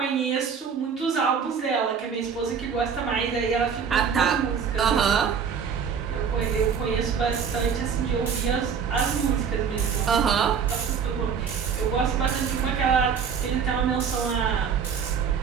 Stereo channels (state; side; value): quieter; left; 6.7 dB